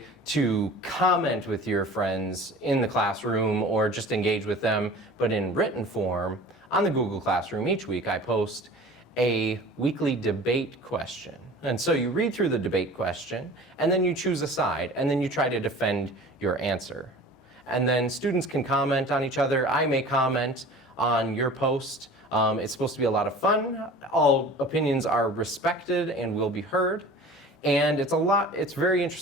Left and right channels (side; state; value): both; normal; correlation 0.42